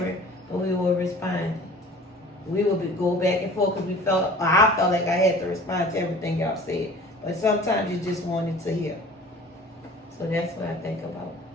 but we were responding. We would go back and forth because I felt like I had to respond to everything y'all said. But sometimes you just wanted to hear. So that's what I think about.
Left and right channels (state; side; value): normal; both; correlation 0.45